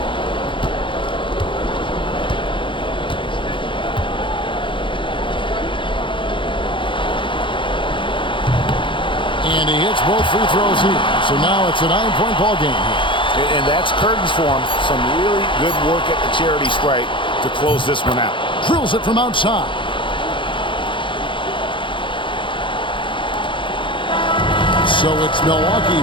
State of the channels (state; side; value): late; right; 0.24 ms